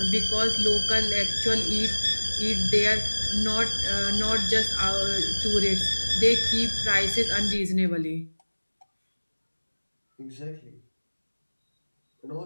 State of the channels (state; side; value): inverted; both; correlation -1.00